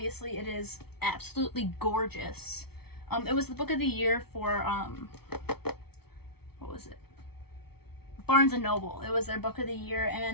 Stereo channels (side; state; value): right; late; 0.96 ms